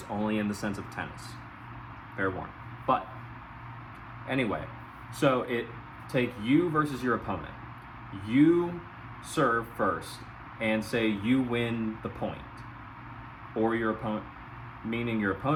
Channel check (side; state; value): both; identical; correlation 1.00